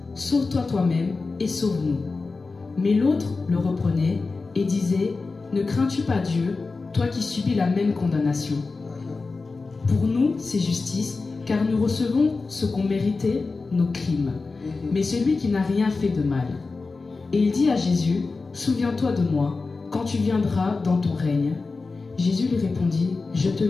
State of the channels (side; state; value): right; quieter; 4.0 dB